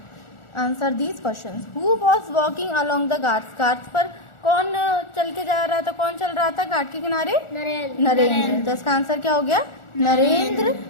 Answer these questions. Who was walking along the Ghats? Ghats पर कौन चल के जा रहा था, कौन चल रहा था घाट के किनारे? नरेंद्र। तो इसका आंसर क्या हो गया? Narendra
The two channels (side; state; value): right; late; 1.4 ms